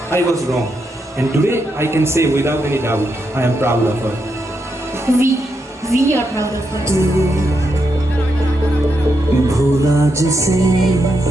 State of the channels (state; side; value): normal; both; correlation 0.82